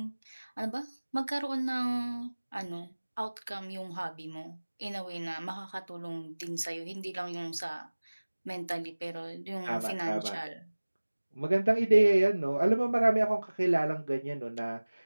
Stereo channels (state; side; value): inverted; both; correlation -1.00